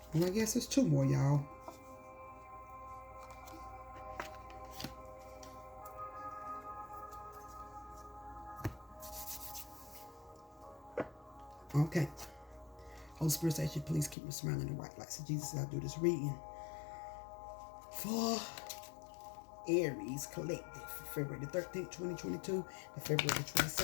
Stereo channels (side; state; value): right; drops out; at 14.2 s